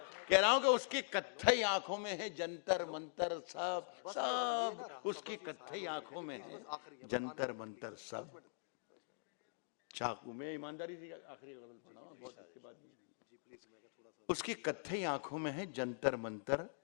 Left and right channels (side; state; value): right; silent; digital silence